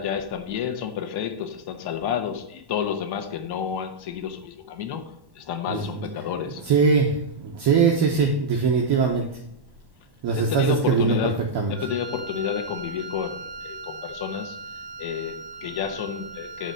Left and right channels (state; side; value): late; left; 1.1 ms